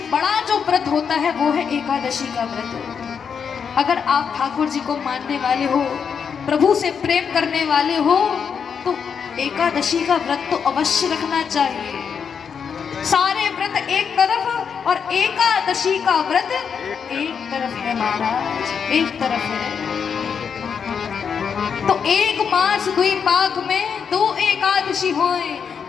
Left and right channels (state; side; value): quieter; right; 6.7 dB